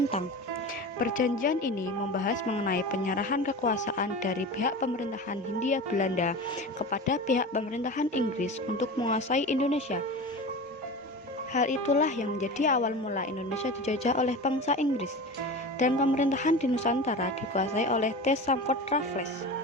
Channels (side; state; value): both; normal; correlation 0.30